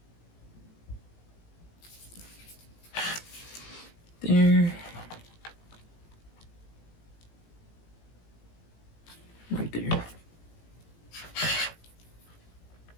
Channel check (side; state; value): right; late; 18 ms